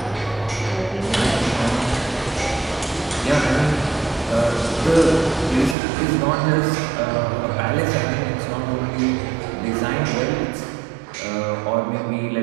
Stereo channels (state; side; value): drops out; left; at 5.8 s